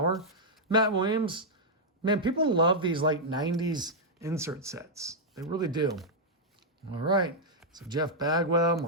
Matt Williams. Man, people love these like 90s insert sets. They really do. All right. So Jeff Bagwell,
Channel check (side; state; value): both; normal; correlation -0.05